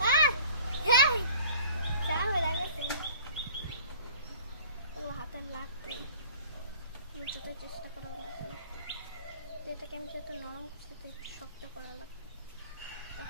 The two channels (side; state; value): both; inverted; correlation -0.49